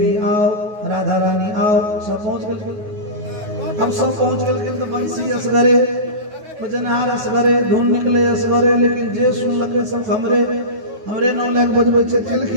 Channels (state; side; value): late; left; 9.4 ms